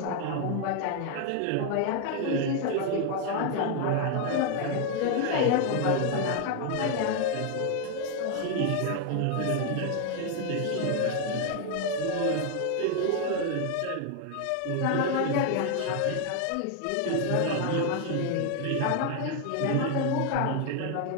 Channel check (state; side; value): different; both; correlation 0.01